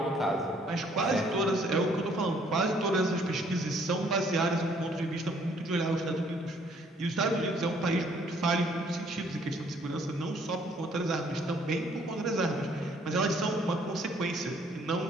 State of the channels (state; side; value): normal; both; correlation 0.63